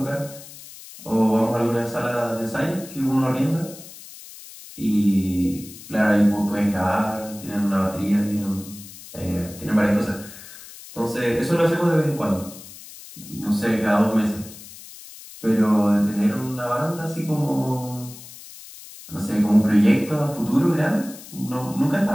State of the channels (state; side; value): noise; left; hiss, 17 dB below the sound